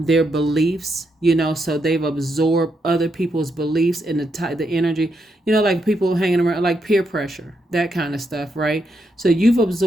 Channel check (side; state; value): both; normal; correlation 0.81